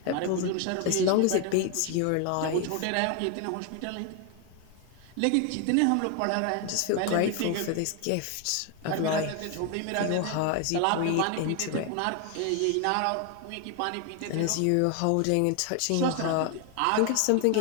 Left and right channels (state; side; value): different; both; correlation 0.01